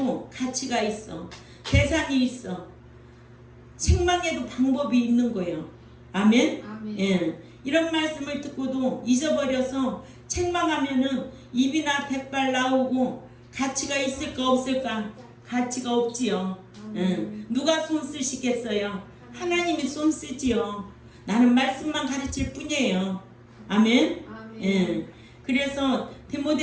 가치가 있어. 대상이 있어. 책망에도 방법이 있는 거예요. 아멘? 아멘. 예. 이런 말씀을 듣고도 잊어버려서 책망하면은 입이나 백발 나오고 가치가 있을까 없을까? 가치가 없지요. 누가 손 쓰시겠어요? 하나님이 손 쓰지요. 나는 말씀만 가르칠 뿐이에요. 아멘. 아멘. 예. 그래서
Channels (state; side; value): identical; both; correlation 1.00